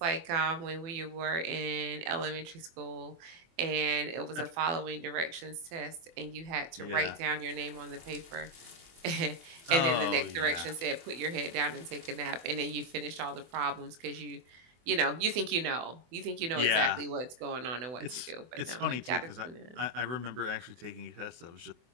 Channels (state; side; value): late; left; 24 ms